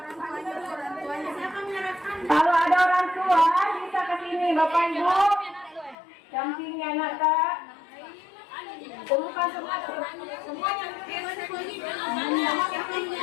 Kalau ada orang tua bisa ke sini Bapak Ibu, dampingi anak tak. Kumpulkan semuanya.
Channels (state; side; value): drops out; right; at 6.0 s